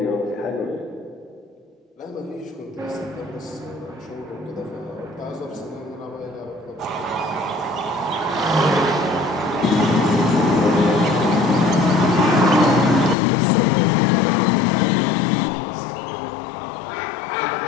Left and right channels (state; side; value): drops out; right; at 13.2 s